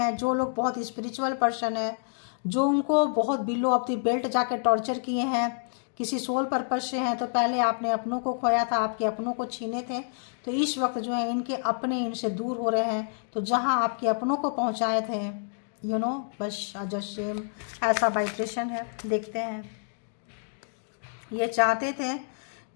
जो लोग बहुत स्पिरिचुअल पर्सन है, जो उनको बहुत बिलो ऑफ द बेल्ट जाके टॉर्चर किए हैं किसी सोल पर्पज से हैं, तो पहले आपने अपनों को खोया था, आपके अपनों को छीने थे, तो इस वक्त जो है इनके अपने इनसे दूर हो रहे हैं। तो जहां आपके अपनों को पहुंचाए थे, यू नो, बस जस्ट सेम ऐसा वाइब्रेशन है। देखते हैं, ये चाहते थे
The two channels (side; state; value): right; silent; digital silence